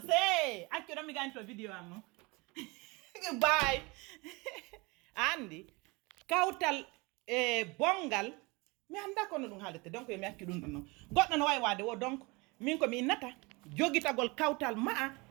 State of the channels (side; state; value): left; quieter; 26.1 dB